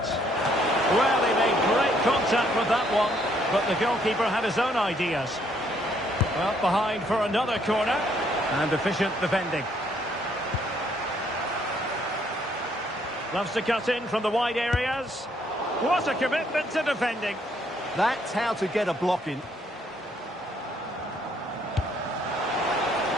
Well, he made great contact with that one, but the goalkeeper had his own ideas. Well, behind for another corner, and efficient defending. Loves to cut in from the wide areas. What a commitment to defending. That's how to get a block in.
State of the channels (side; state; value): both; normal; correlation 0.68